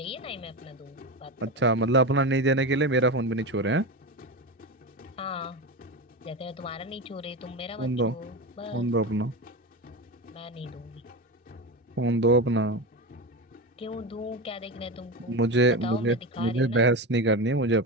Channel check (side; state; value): both; normal; correlation 0.20